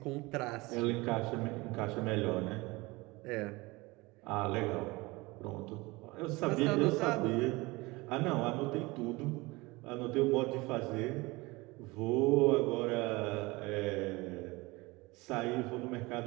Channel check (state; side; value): quieter; left; 22.9 dB